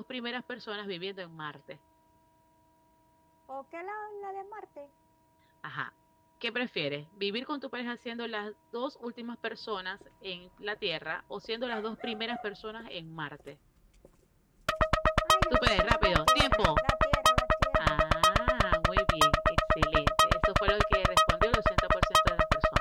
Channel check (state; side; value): identical; both; correlation 1.00